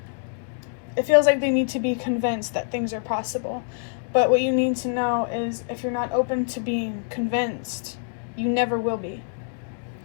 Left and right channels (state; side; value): silent; right; 62 dB below the other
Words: it feels like they need to be convinced that things are possible. But what you need to know is, if you're not open to being convinced, you never will be.